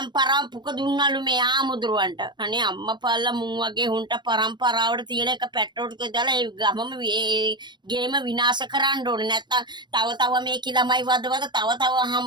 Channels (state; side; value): late; left; 0.22 ms